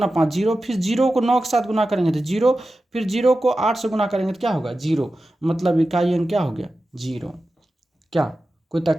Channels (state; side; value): normal; both; correlation 0.93